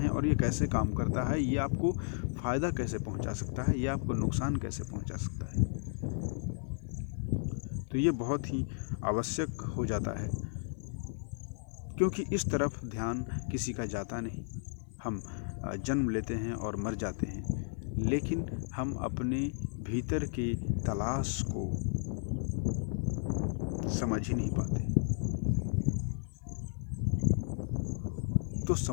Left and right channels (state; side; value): silent; right; 55 dB below the other